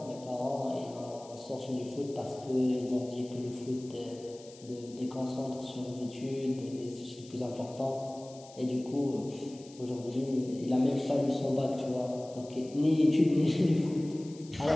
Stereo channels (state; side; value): noise; left; hiss, 21 dB below the sound